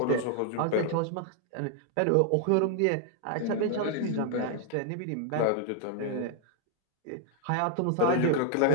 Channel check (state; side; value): different; both; correlation 0.00